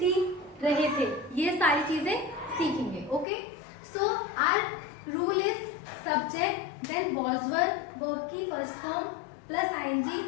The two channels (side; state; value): right; drops out; at 3.2 s